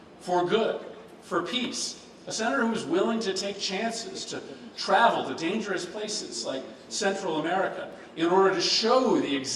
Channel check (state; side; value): identical; both; correlation 1.00